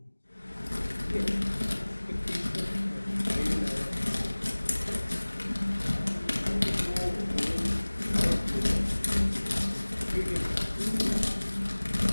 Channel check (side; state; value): both; inverted; correlation -1.00